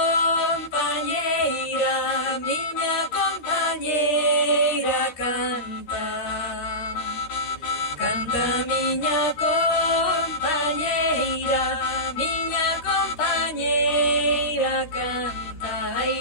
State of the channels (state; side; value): late; right; 12 ms